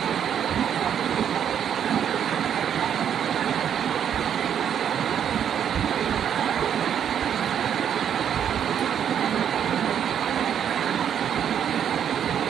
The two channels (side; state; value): left; quieter; 8.9 dB